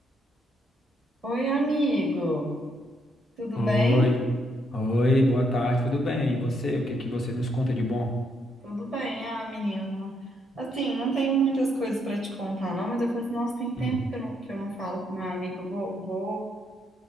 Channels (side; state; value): both; normal; correlation 0.75